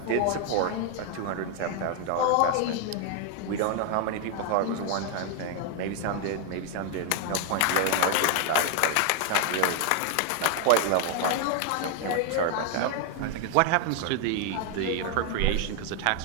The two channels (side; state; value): both; different; correlation 0.00